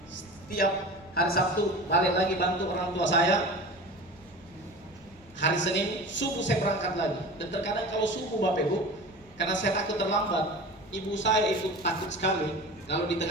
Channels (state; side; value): normal; both; correlation 0.35